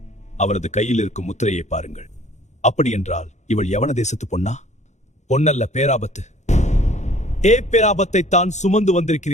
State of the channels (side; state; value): right; late; 0.34 ms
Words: அவரது கையில் இருக்கும் முத்திரையை பாருங்கள். அப்படி என்றால் இவள் யவன தேசத்து பொன்னா? பொன்னல்ல, பேராபத்து. பேராபத்தை தான் சுமந்து